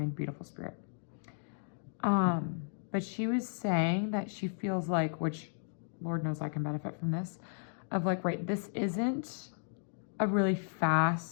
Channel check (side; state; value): right; silent; digital silence